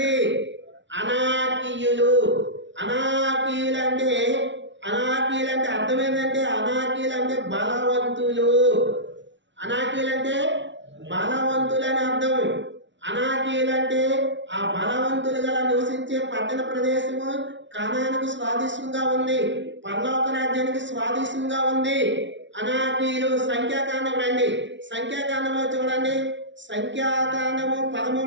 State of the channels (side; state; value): left; late; 0.54 ms